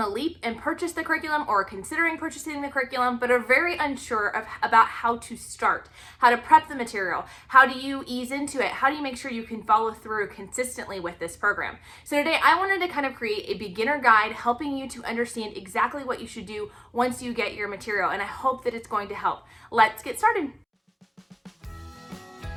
leap and purchased the curriculum or are considering purchasing the curriculum, but are very unsure about how to start, how to prep the material, how do you ease into it, how do you make sure you can follow through consistently with this program. So today I wanted to kind of create a beginner guide helping you to understand exactly what you should do once you get your material, and I hope that it's going to help. Let's get started.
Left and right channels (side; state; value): both; identical; correlation 1.00